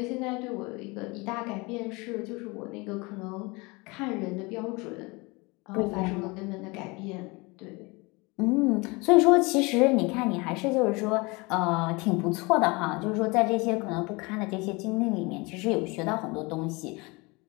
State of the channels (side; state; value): right; quieter; 26.1 dB